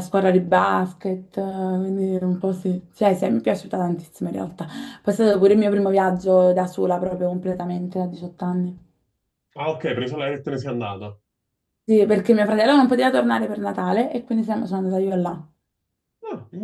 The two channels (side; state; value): both; identical; correlation 1.00